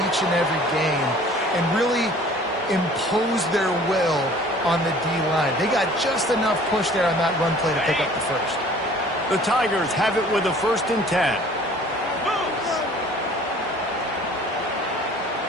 each and every game and really impose their will on the D-line. They got just enough push there on that run play to pick up the first. The Tigers have it with a 1st and 10.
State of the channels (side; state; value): both; normal; correlation 0.50